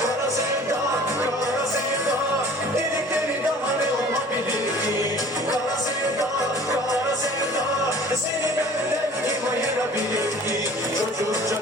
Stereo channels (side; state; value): both; normal; correlation 0.47